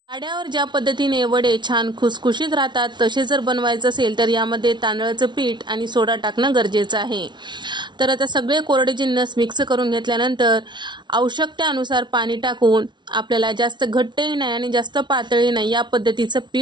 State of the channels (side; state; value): left; late; 0.22 ms